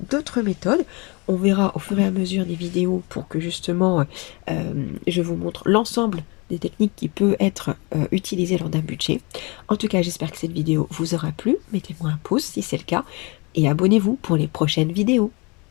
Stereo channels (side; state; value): right; quieter; 28.7 dB